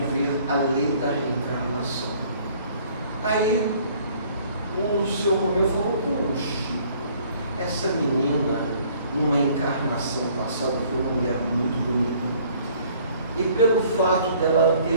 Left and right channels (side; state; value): both; inverted; correlation -0.58